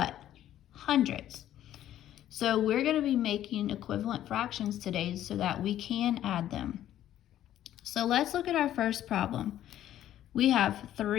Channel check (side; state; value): right; quieter; 12.1 dB